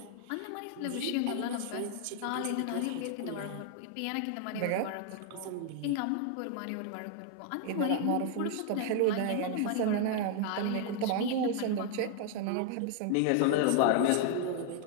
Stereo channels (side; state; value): both; different; correlation 0.00